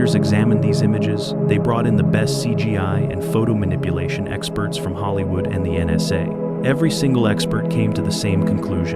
examined these images, they brought in the best CGI and photo manipulation experts from Hollywood and the NSA. Every single expert came to the same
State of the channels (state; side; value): identical; both; correlation 1.00